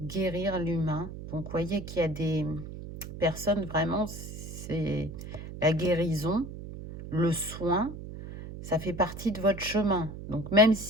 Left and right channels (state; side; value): noise; right; hum, 10 dB below the sound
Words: l'humain. Donc, vous voyez qu'il y a des personnes, vraiment, c'est la guérison, le soin, ça fait partie de votre chemin. Donc, même